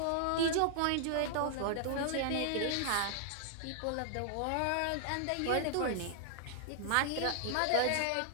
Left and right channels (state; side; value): different; both; correlation -0.01